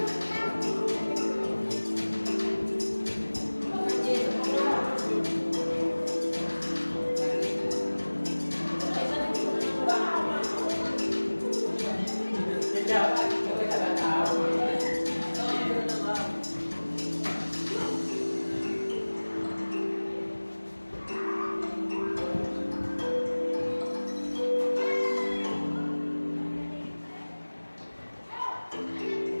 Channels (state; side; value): inverted; both; correlation -1.00